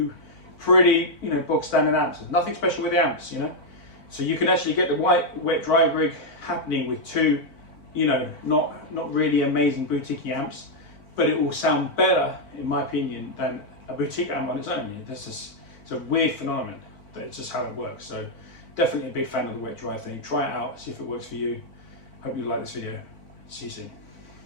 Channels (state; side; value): late; right; 4.5 ms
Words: pretty, you know, bog standard amps. There's nothing special with the amps, you know. So you can actually get the wet dry rig happening with two, you know, not really amazing boutique amps, but it will sound better, in my opinion, than a boutique amp on its own. It's a weird phenomenon, but it's just how it works. So definitely a big fan of the wet dry thing. Try it out, see if it works for you. Hope you like this video. See you soon.